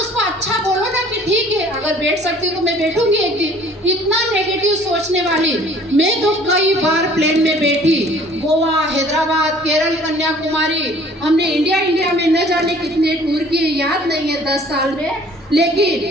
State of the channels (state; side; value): normal; both; correlation 0.53